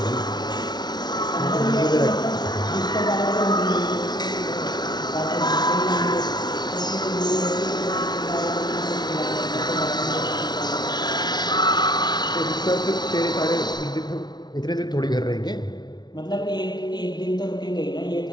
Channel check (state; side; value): late; right; 0.20 ms